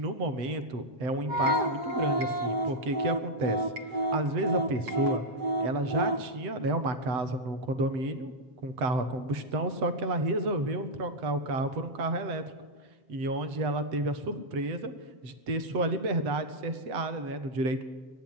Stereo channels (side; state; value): left; late; 7.9 ms